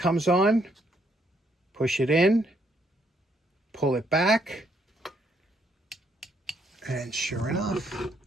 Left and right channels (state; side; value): normal; both; correlation 0.72